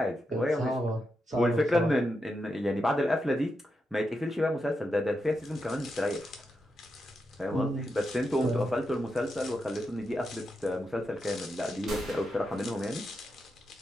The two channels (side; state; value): both; normal; correlation 0.86